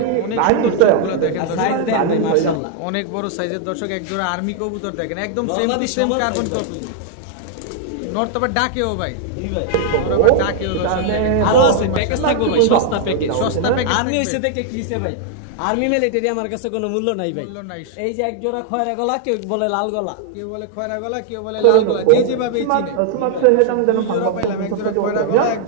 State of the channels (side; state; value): both; different; correlation 0.00